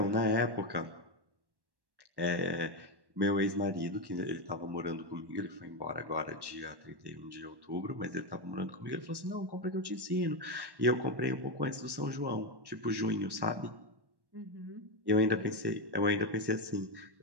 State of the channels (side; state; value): left; late; 1.1 ms